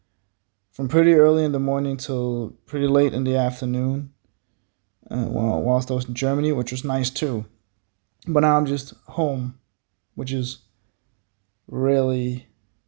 from pretty early in the morning till pretty late in the afternoon. Whilst I was in Germany, which was nice too. But now I'm just home, which is really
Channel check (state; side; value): silent; left; 63 dB below the other